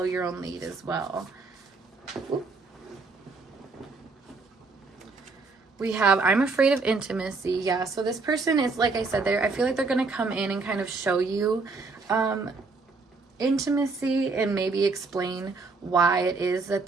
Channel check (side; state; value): left; quieter; 4.0 dB